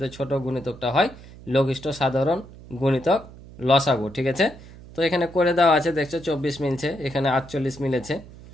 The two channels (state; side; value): noise; right; hum, 18 dB below the sound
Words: ছোট গুণিতকটা হয় লঘিষ্ঠ সাধারণ গুণিতক, লসাগু। ঠিক আছে। তো এখানে করে দেওয়া আছে, দেখছো 24 মিলছে, এখানে 48 মিলেছে।